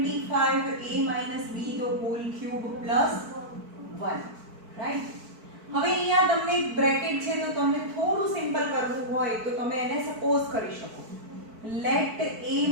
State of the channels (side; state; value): left; late; 4.5 ms